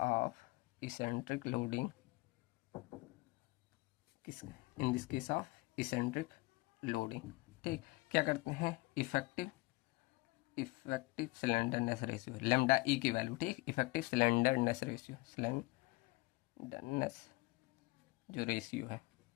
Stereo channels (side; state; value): right; quieter; 23.5 dB